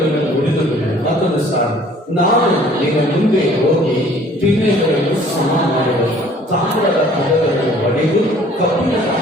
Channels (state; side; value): normal; both; correlation 0.54